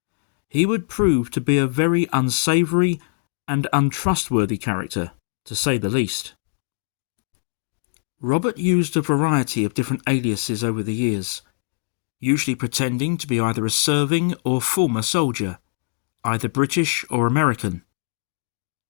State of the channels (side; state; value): right; silent; digital silence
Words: He would prove to be a very unsavoury and untrustworthy character, to say the least. Robert used a variety of different aliases over the years, usually pretending to be either a serving or former soldier, either British or American.